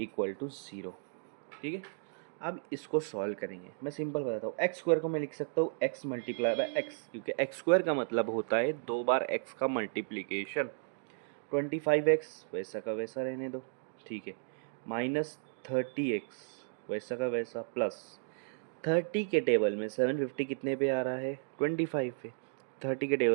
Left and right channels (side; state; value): left; silent; digital silence